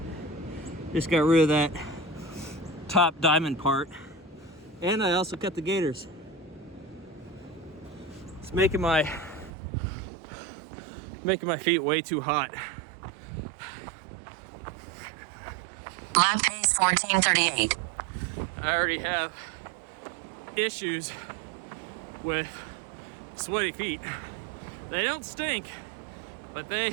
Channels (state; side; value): drops out; left; at 9.5 s